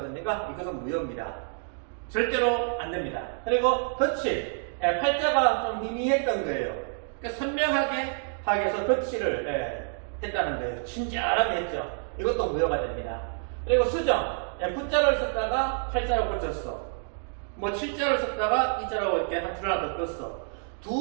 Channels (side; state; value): left; silent; 59 dB below the other